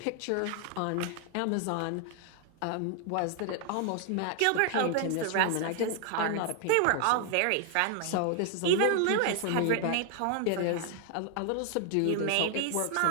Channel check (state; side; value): different; both; correlation 0.00